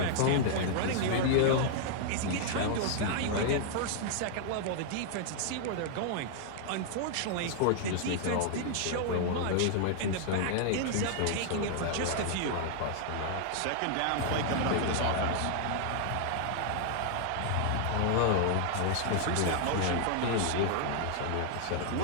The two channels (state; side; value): different; both; correlation -0.01